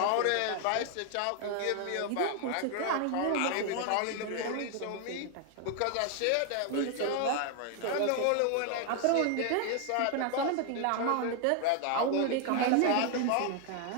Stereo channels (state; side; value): different; both; correlation 0.01